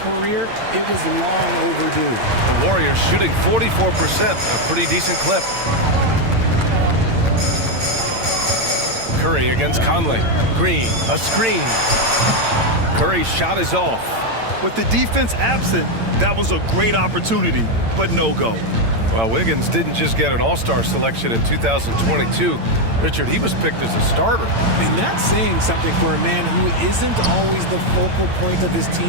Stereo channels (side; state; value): left; late; 8.9 ms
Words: it was long overdue. The Warriors shooting 44%, a pretty decent clip. Curry against Conley. Green, a screen. Curry's shot is off. With the defense absent, that was a great opportunity, but no go. Well, Wiggins didn't just get an All-Star selection in 2022. Richard, he was picked as a starter. And that's saying something for a man who isn't always the focal point of his